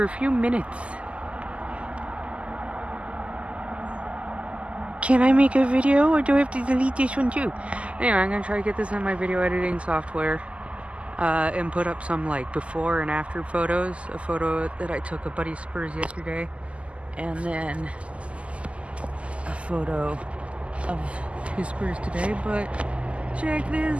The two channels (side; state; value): left; late; 0.059 ms